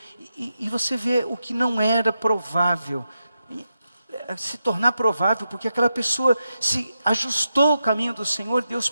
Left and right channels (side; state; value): both; inverted; correlation -0.88